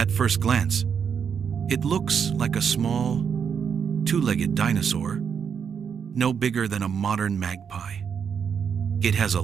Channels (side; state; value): left; quieter; 7.1 dB